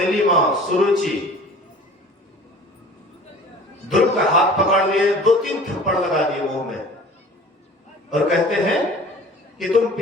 मां सुरुचि ध्रुव का हाथ पकड़ लिए, 2-3 थप्पड़ लगा दिए मुंह में, और कहते हैं कि तुम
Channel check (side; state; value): both; normal; correlation 0.44